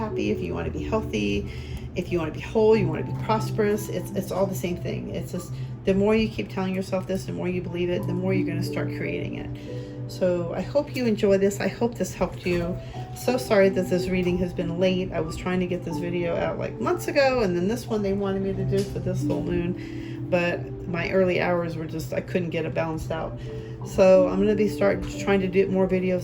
if you want to be healthy, if you want to be whole, you want to be prosperous, it's all the same thing. It's just, the more you keep telling yourself this, the more you believe it, the more you're going to start creating it. So I hope you enjoy this. I hope this helped you. So sorry that this reading has been late. I was trying to get this video out like months ago, and then this one they wanted me to do for this full moon. but my early hours were just, I couldn't get it balanced out. So I'm going to start trying to do more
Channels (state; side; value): identical; both; correlation 1.00